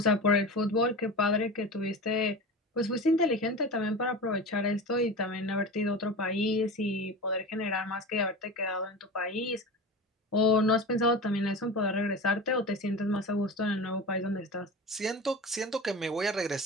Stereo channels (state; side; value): normal; both; correlation 0.30